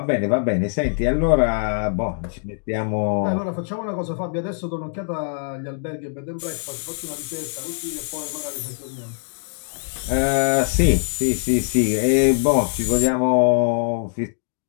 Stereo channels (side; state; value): right; silent; digital silence